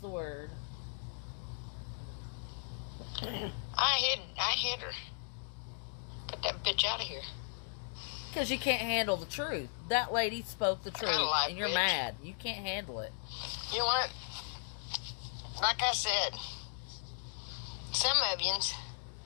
the word. I hit her. Get that bitch out of here. Because you can't handle the truth. That lady spoke the truth. got a life, And you're bitch. mad. You can't handle it. You know what? Like I said, some of yous,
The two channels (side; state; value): right; silent; digital silence